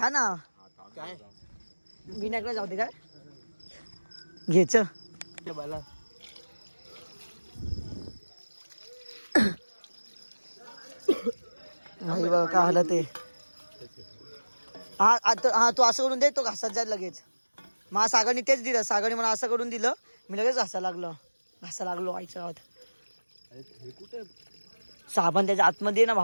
ना काय विनायकला जाऊ दे काय घ्यायच ते मला भाई बघा काय आलं ते हा आता हा तू असं करून दे तो घासात जाईल लगेच मला सागरनी तेच दिलं सागरनी मला असं करून दिलं मी लगेच घासा लागलो आईच्या गावात साबण त्याच्या आतमध्ये ना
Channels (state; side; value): inverted; both; correlation -1.00